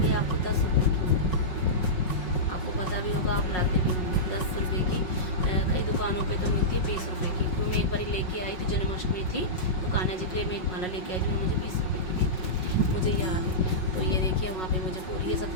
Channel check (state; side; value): late; right; 5.4 ms